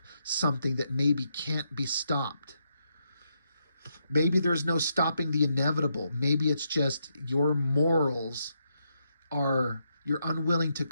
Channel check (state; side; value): inverted; both; correlation -0.80